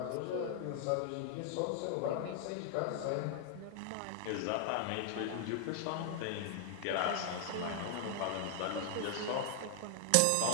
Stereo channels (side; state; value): both; different; correlation 0.00